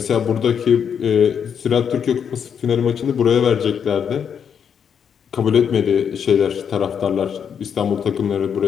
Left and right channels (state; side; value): quieter; right; 7.6 dB